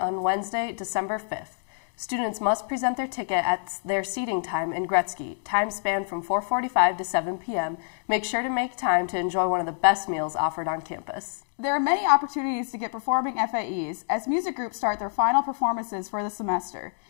Wednesday, December 5th. Students must present their ticket at their seating time in Gretzky. Time span from 4:45 to 7 p.m. Make sure to make time to enjoy one of the best meals offered on campus. There are many opportunities to get performing FAEs as music groups start their final performances for the semester.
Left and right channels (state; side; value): silent; right; digital silence